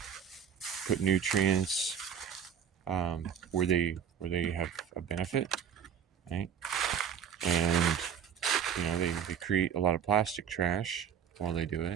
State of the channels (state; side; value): quieter; left; 8.2 dB